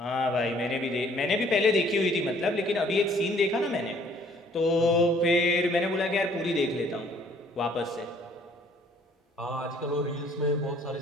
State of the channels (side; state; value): both; normal; correlation 0.59